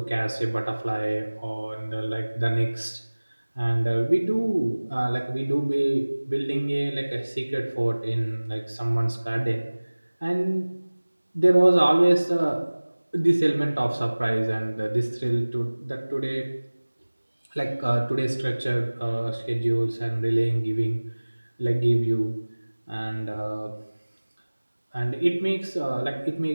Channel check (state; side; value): inverted; both; correlation -1.00